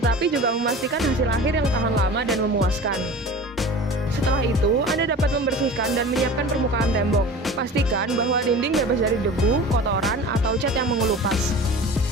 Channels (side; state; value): both; normal; correlation 0.38